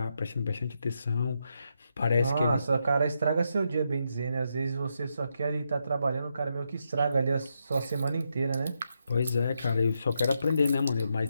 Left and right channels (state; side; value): inverted; both; correlation -0.82